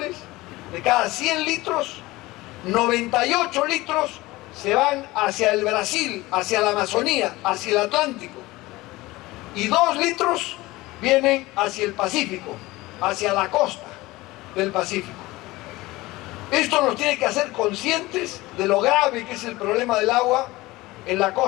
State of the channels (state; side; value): quieter; right; 19.8 dB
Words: de cada 100 litros, 98 litros se van hacia el Brasil, hacia la Amazonía, hacia el Atlántico. Y 2 litros vienen hacia el Pacífico, hacia la costa del Pacífico. Esto nos tiene que hacer conscientes de lo grave que es el problema del agua en la